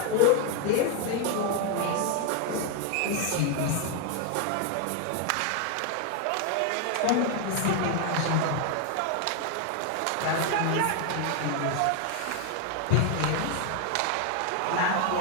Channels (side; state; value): both; different; correlation 0.01